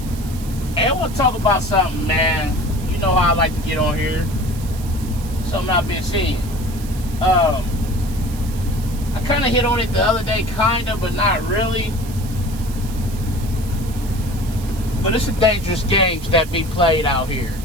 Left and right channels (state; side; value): noise; right; hiss, 17 dB below the sound